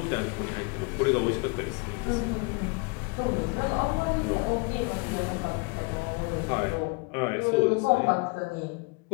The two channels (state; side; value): quieter; right; 30.0 dB